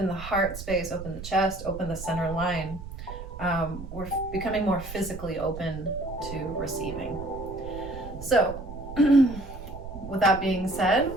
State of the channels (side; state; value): right; noise; rumble, 11 dB below the sound